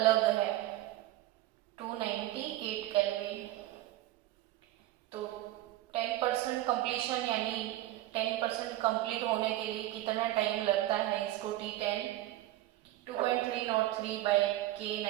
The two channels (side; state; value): left; quieter; 15.6 dB